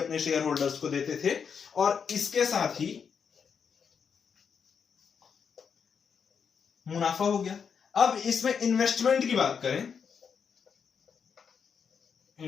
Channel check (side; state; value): right; quieter; 6.6 dB